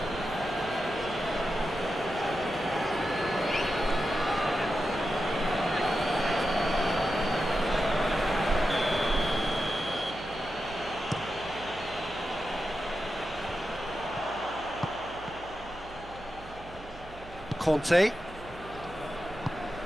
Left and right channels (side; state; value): right; noise; hum, 18 dB below the sound